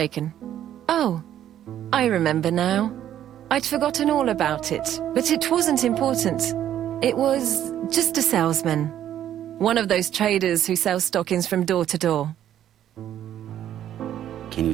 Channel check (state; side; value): quieter; left; 11.1 dB